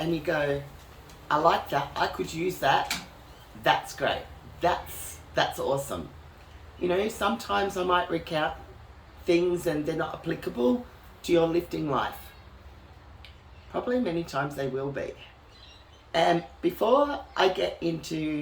you go, I like that, I could use that, that's great. That's awesome. You know, sometimes I might recount things and they're not applicable to your lifting life. Probably many times they will be. And before I get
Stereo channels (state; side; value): identical; both; correlation 1.00